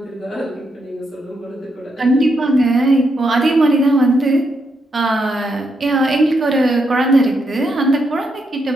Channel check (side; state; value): both; normal; correlation 0.81